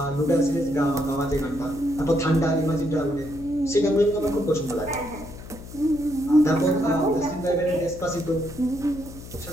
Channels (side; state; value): left; noise; hum, 14 dB below the sound